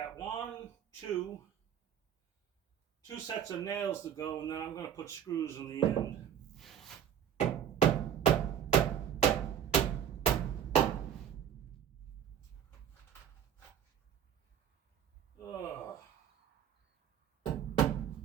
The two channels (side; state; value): left; quieter; 9.3 dB